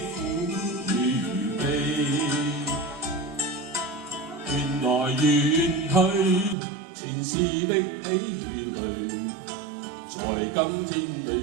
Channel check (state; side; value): drops out; left; at 6.6 s